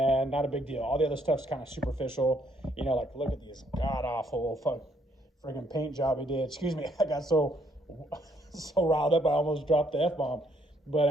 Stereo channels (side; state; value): both; normal; correlation 0.69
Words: not a big deal. All the other stuff's kind of superficial. You know, like look at these god-awful friggin' paint job he did. Excuse me, I got so riled up I almost dropped the F-bomb. But